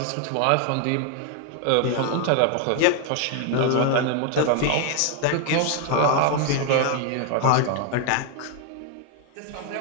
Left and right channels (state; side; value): different; both; correlation 0.01